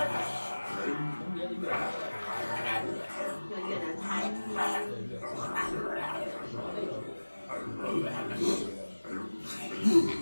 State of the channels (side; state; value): both; inverted; correlation -1.00